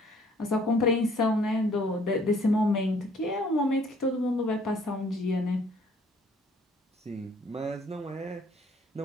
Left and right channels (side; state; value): both; normal; correlation 0.59